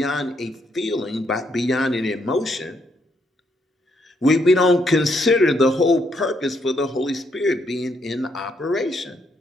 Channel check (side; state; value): both; normal; correlation 0.74